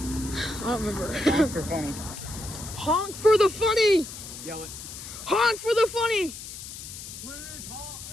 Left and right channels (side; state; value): left; noise; hiss, 11 dB below the sound